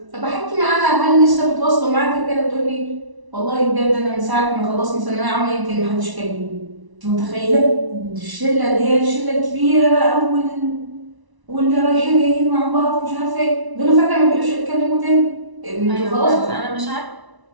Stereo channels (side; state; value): left; late; 1.0 ms